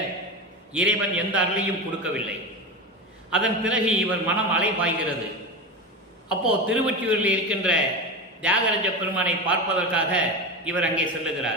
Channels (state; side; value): normal; both; correlation 0.21